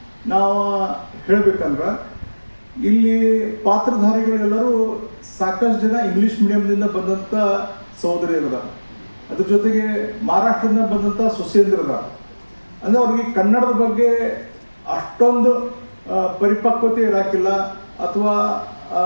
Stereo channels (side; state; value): both; inverted; correlation -1.00